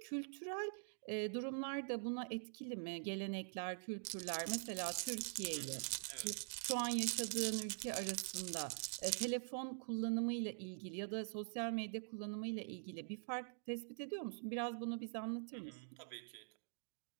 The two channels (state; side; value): silent; left; digital silence